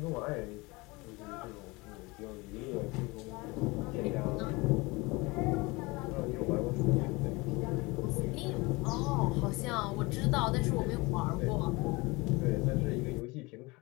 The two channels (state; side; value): quieter; right; 24.4 dB